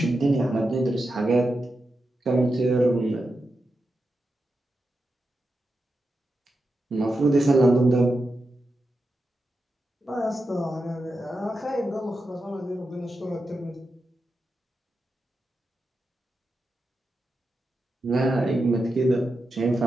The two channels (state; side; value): normal; both; correlation 0.89